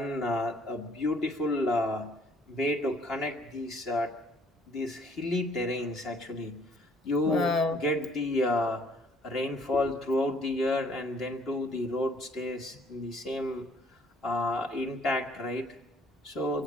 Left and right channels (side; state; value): both; normal; correlation 0.61